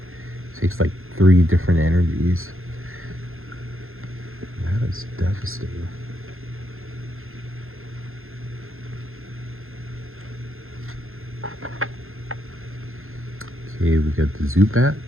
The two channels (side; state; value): left; late; 0.61 ms